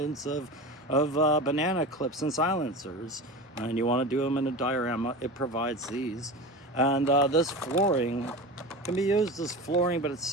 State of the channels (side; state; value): both; normal; correlation 0.28